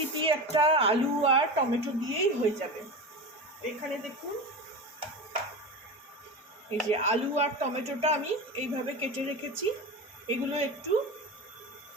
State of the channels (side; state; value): both; normal; correlation 0.26